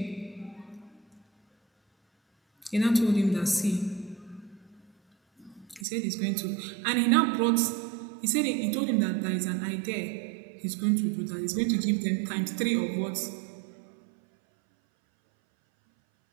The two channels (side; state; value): left; drops out; at 5.9 s